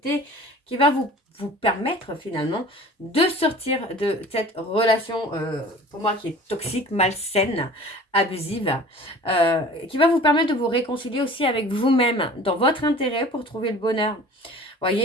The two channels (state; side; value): normal; both; correlation 0.44